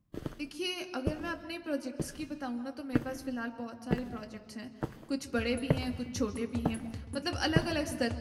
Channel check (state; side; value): identical; both; correlation 1.00